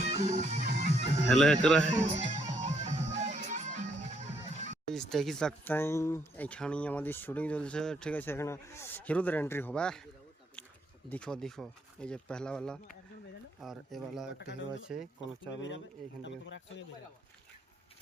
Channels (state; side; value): normal; both; correlation 0.73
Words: hello करा है দেখি सकते এখানে আমাদের শুটিং চলছে ঠিক আছে এখানে হিরোদের এন্ট্রি হবে देखो देखो এই যে पहला वाला और ये वाला একটা হিরো আছে কোন চাপ নেই এখান থেকে